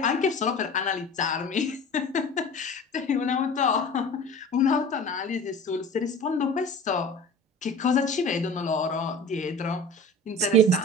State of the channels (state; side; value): normal; both; correlation 0.38